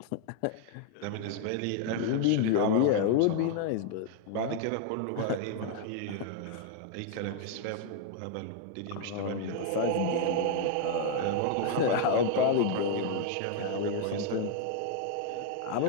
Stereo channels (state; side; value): different; both; correlation 0.00